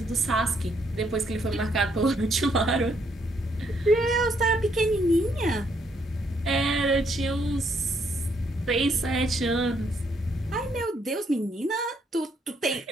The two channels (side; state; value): both; normal; correlation 0.72